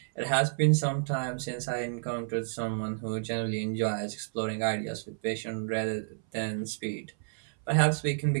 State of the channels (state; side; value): silent; left; 58 dB below the other